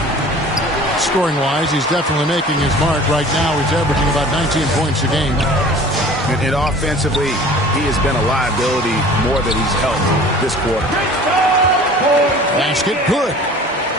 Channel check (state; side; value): normal; both; correlation 0.45